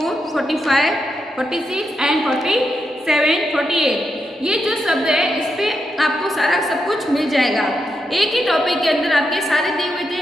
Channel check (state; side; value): normal; both; correlation 0.84